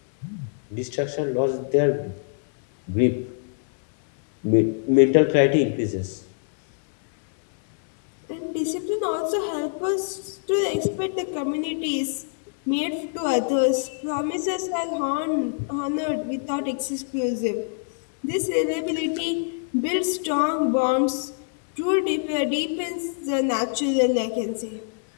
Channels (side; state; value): right; silent; digital silence